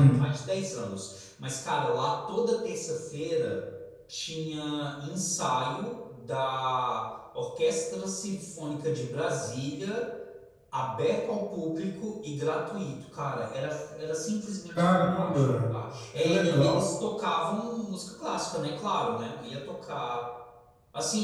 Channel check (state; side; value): identical; both; correlation 1.00